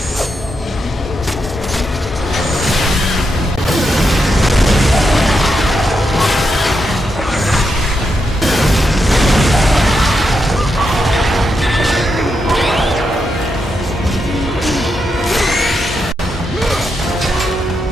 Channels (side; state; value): both; normal; correlation 0.84